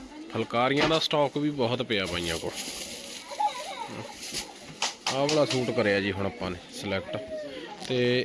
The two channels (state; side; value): identical; both; correlation 1.00